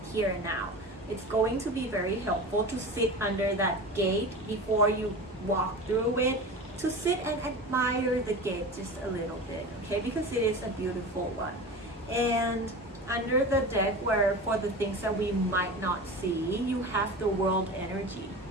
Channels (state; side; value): normal; both; correlation 0.31